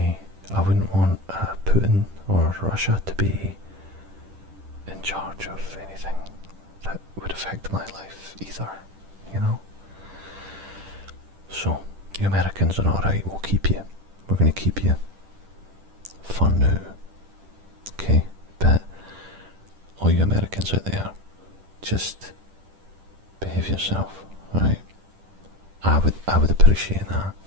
Putin or Russia to be in charge of anything that would affect my life either, you know? So, you Americans are alright, we'll keep you. We're going to keep you for now. Okay? But all you Americans out there, just behave yourself, right? I would appreciate that,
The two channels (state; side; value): late; left; 10 ms